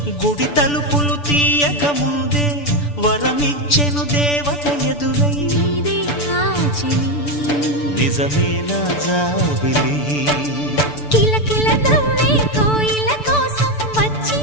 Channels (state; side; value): late; right; 6.9 ms